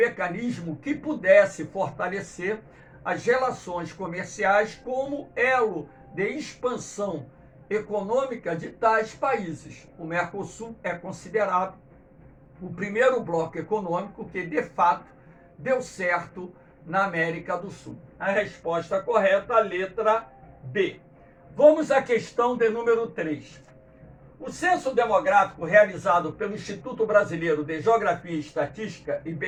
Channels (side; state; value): both; identical; correlation 1.00